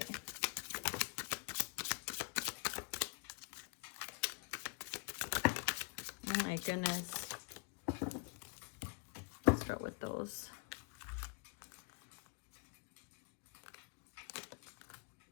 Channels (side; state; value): right; quieter; 34.4 dB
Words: Oh my goodness. Let's start with those.